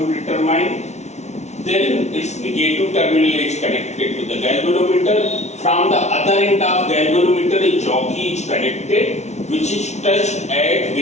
determine. Then its negative terminal is connected to the galvanometer. From the other end of galvanometer, a jockey is connected, which is touched at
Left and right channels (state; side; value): late; right; 0.32 ms